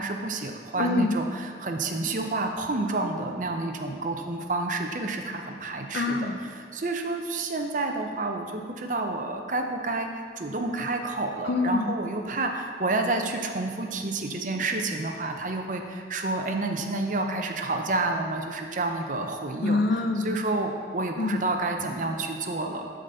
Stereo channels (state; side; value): normal; both; correlation 0.21